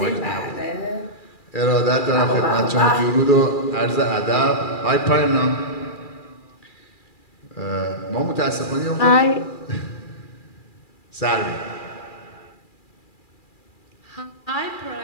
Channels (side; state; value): right; late; 2.4 ms